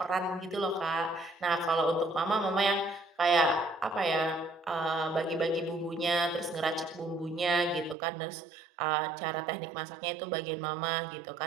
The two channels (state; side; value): drops out; left; at 8.0 s